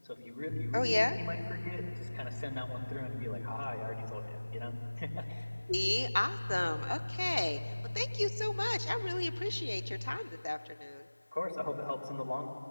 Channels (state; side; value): inverted; both; correlation -1.00